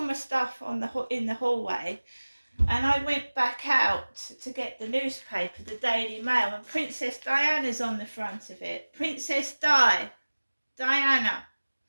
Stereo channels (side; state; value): both; inverted; correlation -1.00